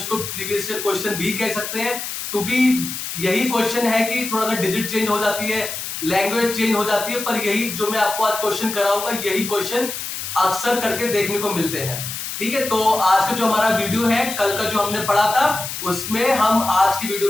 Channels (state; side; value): noise; left; hiss, 6 dB below the sound